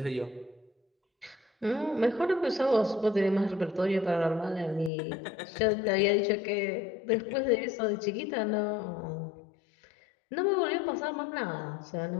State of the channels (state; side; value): drops out; right; at 4.9 s